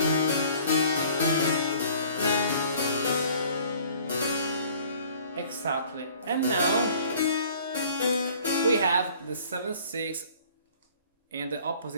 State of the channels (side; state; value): both; inverted; correlation -0.53